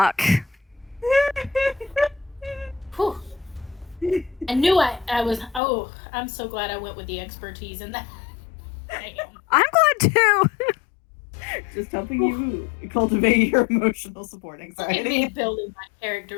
Whew. I knew I was. Oh, I'm so glad I went with the expertise in that. Damn. I'm glad, too. Just helping you cultivate your emotional support Look at me anxiety. building my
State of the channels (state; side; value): drops out; right; at 5.6 s